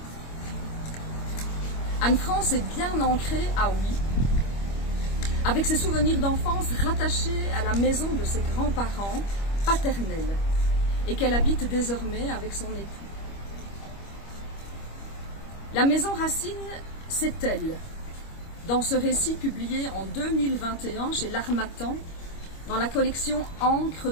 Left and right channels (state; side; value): late; right; 25 ms